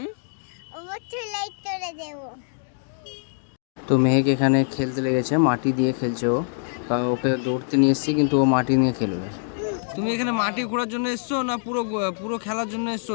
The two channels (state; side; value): silent; right; digital silence